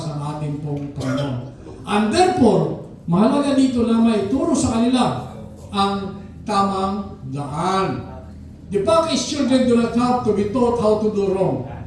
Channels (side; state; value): both; identical; correlation 1.00